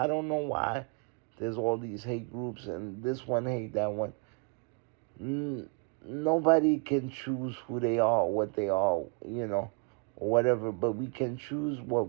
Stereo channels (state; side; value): quieter; left; 35.0 dB